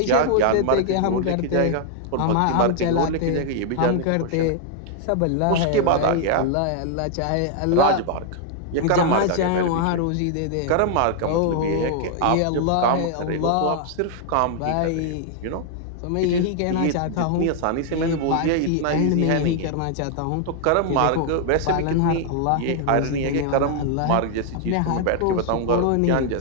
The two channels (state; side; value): different; both; correlation 0.00